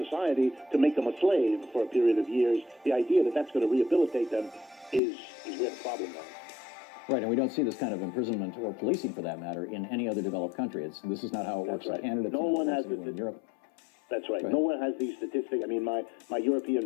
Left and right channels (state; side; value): drops out; right; at 5.0 s